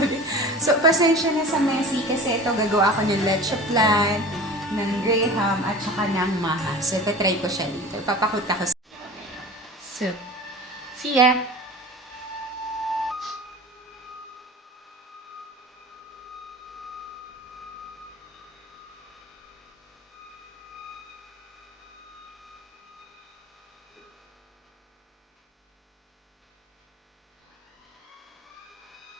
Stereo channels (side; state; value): both; normal; correlation 0.37